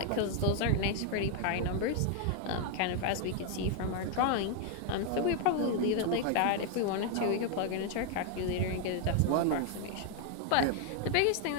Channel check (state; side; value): different; both; correlation 0.00